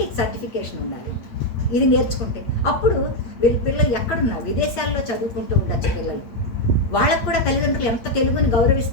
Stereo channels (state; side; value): late; right; 8.6 ms